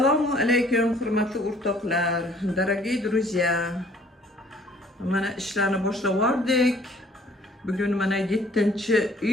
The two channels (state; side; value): normal; both; correlation 0.58